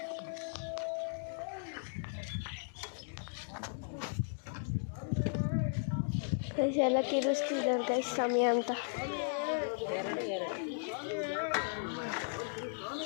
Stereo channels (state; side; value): silent; right; digital silence